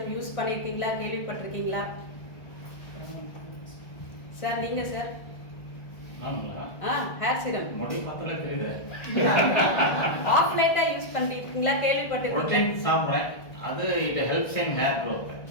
யூஸ் பண்ணியிருக்கீங்களா, கேள்விப்பட்டிருக்கீங்களா? சார் நீங்கள் சார்? ஹேர் சீரம் ஆஃப்லைட்டா யூஸ் பண்ணிருக்கீங்களா, கேள்விப்பட்டிருக்கீங்களா? அது it helps in hair growth,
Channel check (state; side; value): late; right; 1.6 ms